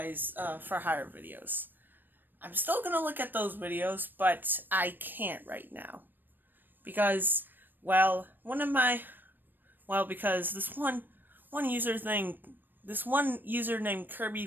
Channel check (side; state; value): left; late; 0.093 ms